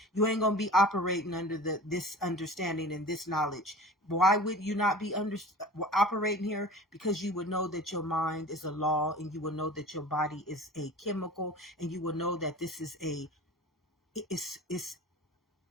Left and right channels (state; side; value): normal; both; correlation 0.39